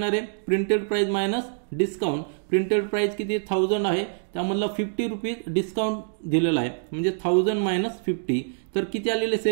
आहे, printed price minus discount. Printed price किती 1000 आहे, त्यामधला ₹50 डिस्काउंट दिलेला आहे, म्हणजे 1000 मायनस 50. तर किती आलेले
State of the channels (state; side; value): silent; left; digital silence